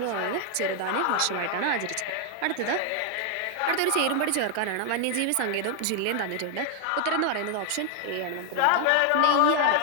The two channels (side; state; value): both; different; correlation 0.00